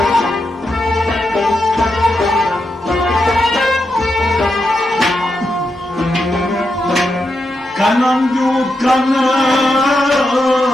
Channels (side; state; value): both; normal; correlation 0.85